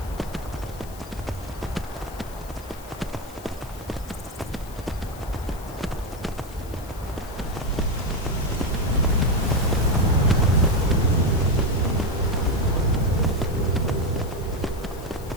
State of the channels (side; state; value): left; noise; hiss, 19 dB below the sound